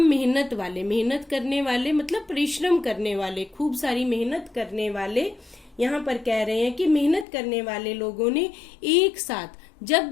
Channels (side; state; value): right; drops out; at 7.2 s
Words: मेहनत वाले, मेहनत करने वाले मतलब परिश्रम करने वाले, खूब सारी मेहनत करने वाले, यहाँ पर कह रहे हैं कि मेहनत करने वाले लोगों ने एक साथ जब